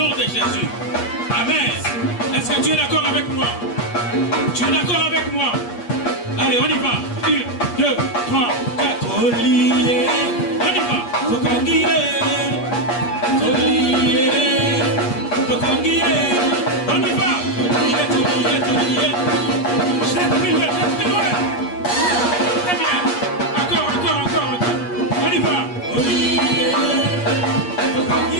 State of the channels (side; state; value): right; late; 8.4 ms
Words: de Jésus. Amen. Est-ce que tu es d'accord avec moi? Tu es d'accord avec moi? Allez, on y va. 1, 2, 3, 4. Olié. On y va. Tokangire. Olié. Tokangire. On y va. Olié. Jette plus loin. Très bien. Encore. On y va. Olié.